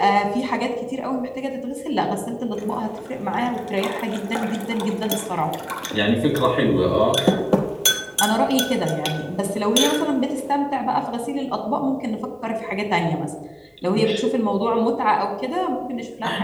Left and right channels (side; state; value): both; identical; correlation 1.00